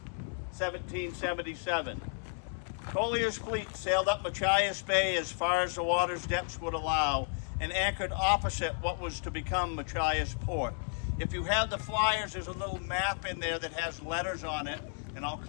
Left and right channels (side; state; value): right; silent; 56 dB below the other